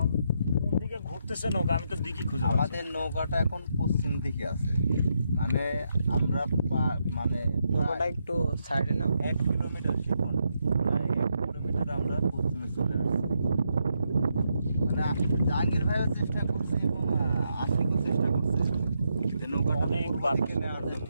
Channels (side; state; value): both; inverted; correlation -0.80